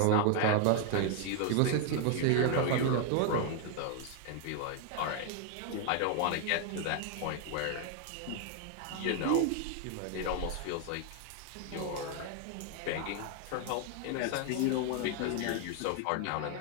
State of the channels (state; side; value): different; both; correlation 0.00